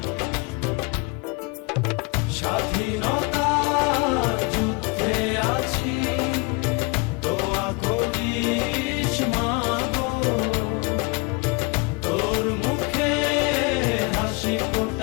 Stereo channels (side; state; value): right; quieter; 27.9 dB